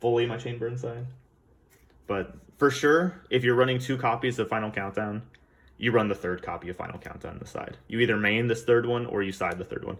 fully my Chain Burn side. But for sure, if you're running 2 copies of Final Countdown, you run the 3rd copy of Final Countdown on the side. You either main this 3rd one or you side the 3rd one,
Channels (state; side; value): identical; both; correlation 1.00